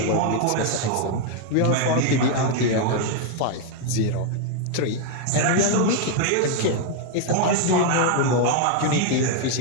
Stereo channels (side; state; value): both; different; correlation 0.00